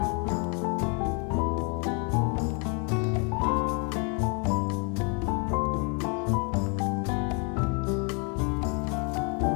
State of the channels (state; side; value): quieter; right; 33.9 dB